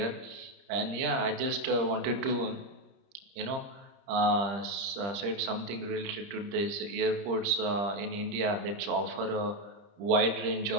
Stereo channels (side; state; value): left; late; 30 ms